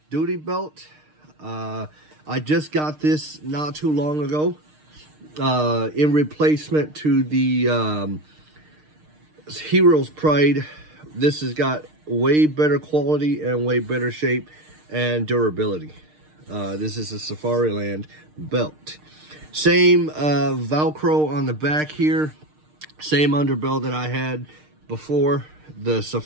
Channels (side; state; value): left; late; 6.5 ms